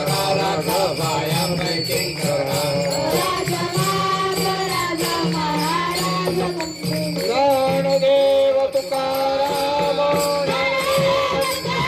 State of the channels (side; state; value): both; identical; correlation 1.00